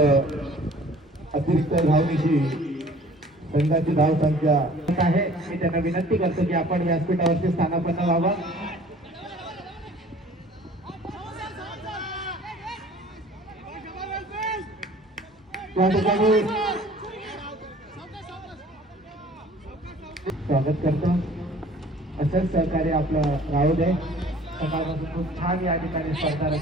अतिरिक्त धावनीची संघाची धावसंख्या आहे. मी त्यांना विनंती करतो की आपण व्यासपीठावरती स्थानापन्न व्हावं. त्या ठिकाणी स्वागत करतो. असंच सहकार्य आपलं राहू दे. सकाळपासून खूप छान या ठिकाणी स्पर्धा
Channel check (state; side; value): normal; both; correlation 0.50